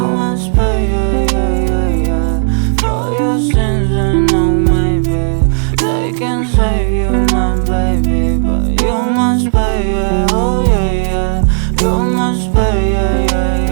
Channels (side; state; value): left; silent; digital silence